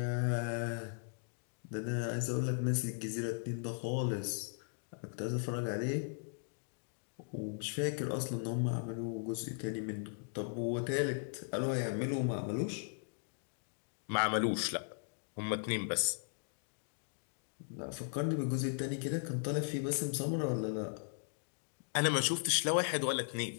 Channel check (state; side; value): silent; right; digital silence